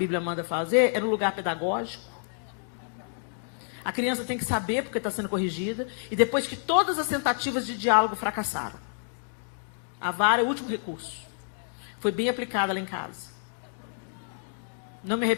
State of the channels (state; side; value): silent; right; digital silence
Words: manda fazer é no lugar pedagógico. A criança tem que saber porque está sendo corrigida. E depois de todas as tentativas de diálogo fracassaram, a vara é o último recurso. Foi bem aplicada lá em casa. Não me